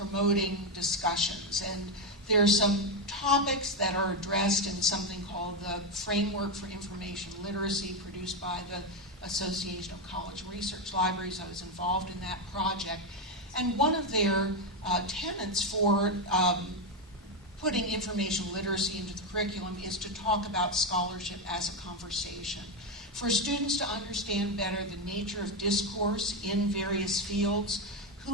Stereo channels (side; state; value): both; normal; correlation 0.08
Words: discussions, and there are some topics that are addressed in something called the Framework for Information Literacy, produced by the Association of College Research Libraries. I was involved in that project. And one of their tenets for putting information literacy into the curriculum is to talk about scholarship as a conversation. for students to understand better the nature of discourse in various fields,